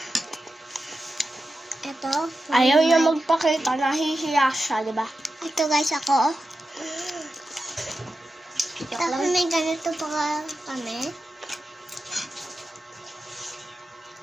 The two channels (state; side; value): normal; both; correlation 0.91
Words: Ito. Ayaw niya magpakita, nahihiya siya, di ba? Ito guys ako. Tapos may ganito pa kami.